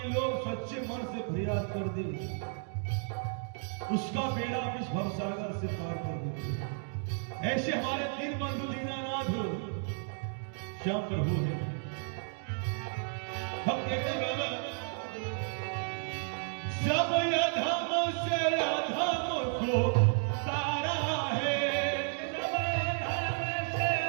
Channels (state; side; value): silent; left; 56 dB below the other